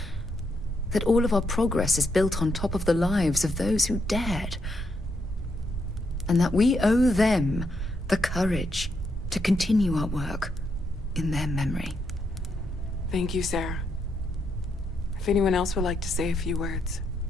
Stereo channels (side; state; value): both; normal; correlation 0.79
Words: that all of our progress is built on top of the lives of those who dared. And that we owe them the courage to continue our work in their memory. Thank you, Sarah. If anyone else would like to say a few words.